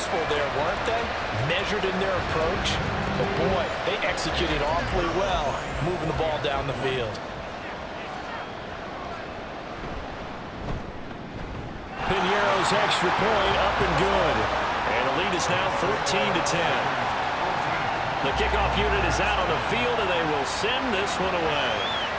there, weren't they? Measured in their approach. But boy, they executed awfully well, moving the ball down the field. Piñeiro's extra point up and good. And the lead is now 14-10. The kickoff unit is out on the field, and they will send this one away.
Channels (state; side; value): identical; both; correlation 1.00